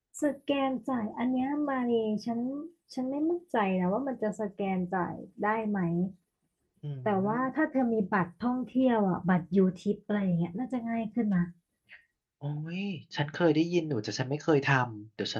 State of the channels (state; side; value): identical; both; correlation 1.00